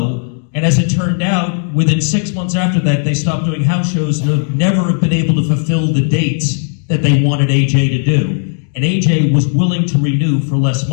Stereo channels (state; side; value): silent; right; digital silence